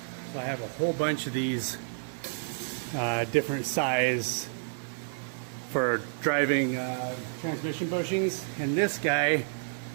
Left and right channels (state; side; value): silent; left; 58 dB below the other